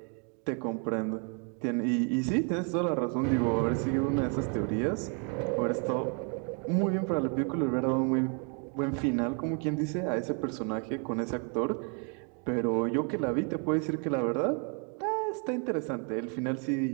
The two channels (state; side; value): quieter; left; 39.4 dB